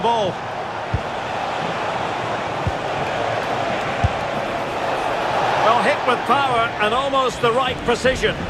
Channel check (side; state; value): both; identical; correlation 1.00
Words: ball. Well, hit with power and almost the right precision.